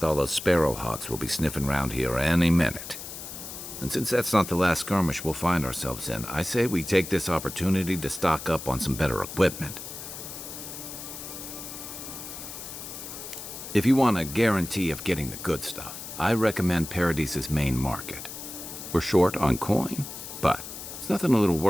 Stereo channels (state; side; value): noise; left; hiss, 10 dB below the sound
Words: sparrowhawks will be sniffing around here any minute. And since that's not the last skirmish we'll find ourselves in, I say we take this opportunity to stock up on some better equipment. If you want a guarantee of getting the good stuff, I recommend Paradise's main market. We're short on coin, but it's nothing a little